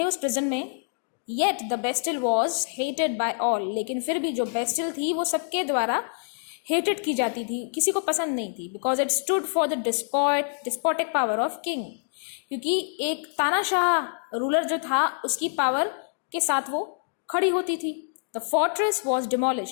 उस प्रिजन में. Yet the Bastille was hated by all, लेकिन फिर भी जो बेस्टिल थी वो सबके द्वारा हेटेड की जाती थी, किसी को पसंद नहीं थी. Because it stood for the despotic power of king, क्योंकि एक तानाशाह रूलर जो था उसकी पावर के साथ वो खड़ी होती थी. द फोर्ट्रेस वॉज डिमोलिश,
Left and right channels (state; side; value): silent; right; 61 dB below the other